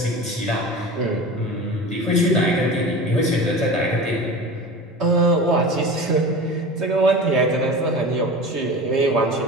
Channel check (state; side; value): normal; both; correlation 0.33